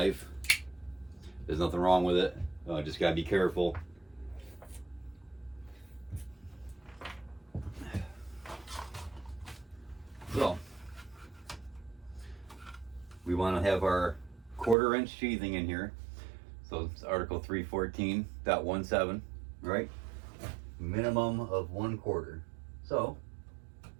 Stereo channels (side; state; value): left; drops out; at 14.8 s